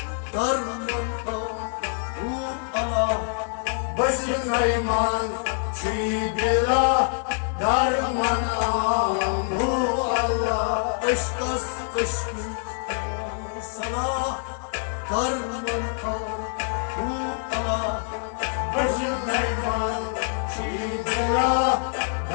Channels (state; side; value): silent; right; 61 dB below the other